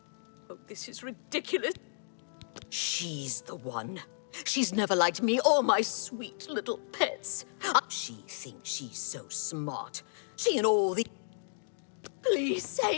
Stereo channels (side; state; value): right; silent; digital silence